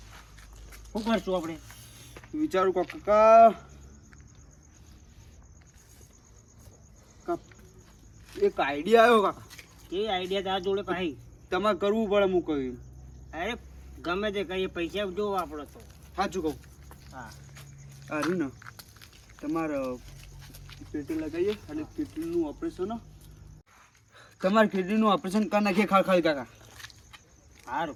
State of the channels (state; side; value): identical; both; correlation 1.00